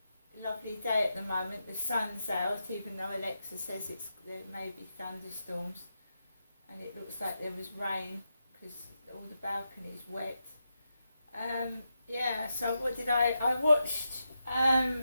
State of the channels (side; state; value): both; inverted; correlation -0.87